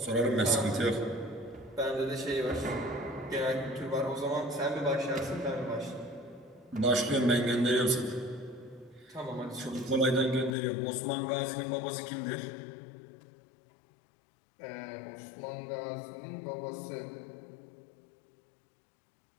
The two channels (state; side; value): drops out; right; at 10.6 s